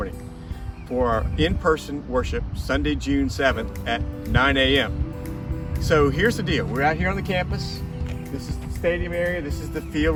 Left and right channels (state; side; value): identical; both; correlation 1.00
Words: for our in-person worship, Sunday, June 7th at 9 a.m. So here's the deal. We're out here on the campus. This is the stadium area. This is the field